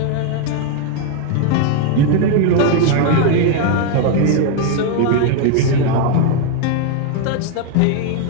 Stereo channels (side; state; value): both; different; correlation 0.01